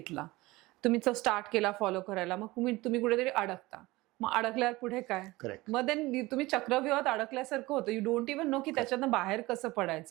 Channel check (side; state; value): left; quieter; 20.4 dB